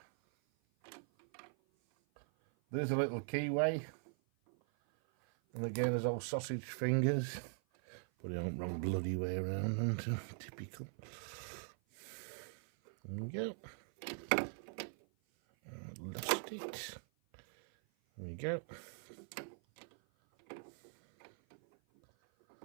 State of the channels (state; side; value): silent; left; 50 dB below the other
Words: There's a little keyway, and again there's all sausage fingers. Put it on the wrong bloody way around, and typical. There we go. Lost it. There we go.